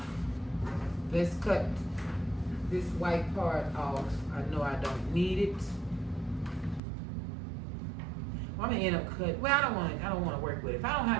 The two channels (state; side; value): drops out; left; at 6.8 s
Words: let's cut this white part off. I know I don't need it. Well, I'm gonna end up cutting. Well, I don't want to work with it. If I don't